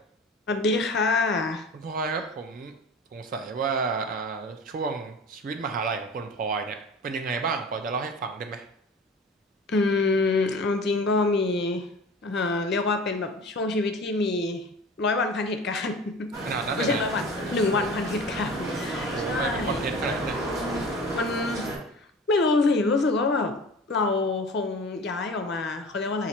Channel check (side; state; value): both; normal; correlation 0.38